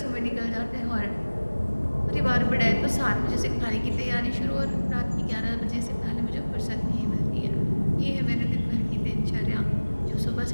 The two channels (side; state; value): both; inverted; correlation -1.00